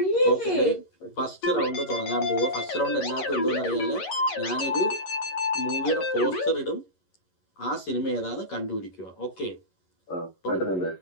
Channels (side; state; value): right; late; 11 ms